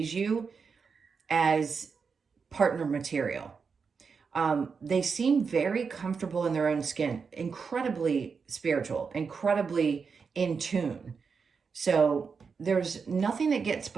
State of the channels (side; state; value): left; quieter; 5.5 dB